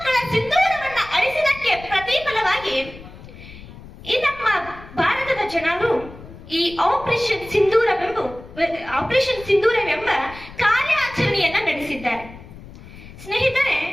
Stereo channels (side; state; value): left; noise; rumble, 17 dB below the sound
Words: ಸಿಂಧೂರವನ್ನ ಅಳಿಸಿದಕ್ಕೆ ಪ್ರತಿಫಲವಾಗಿ ಈ ನಮ್ಮ ಭಾರತದ ಜನರು ಈ ಆಪರೇಷನ್ ಸಿಂಧೂರವೆಂಬ ಕಾರ್ಯಾಚರಣೆಯನ್ನ ನಡೆಸಿದ್ದಾರೆ. ಸ್ನೇಹಿತರೆ,